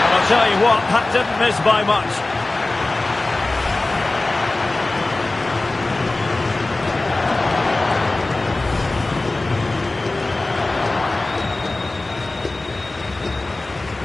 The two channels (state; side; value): quieter; right; 3.0 dB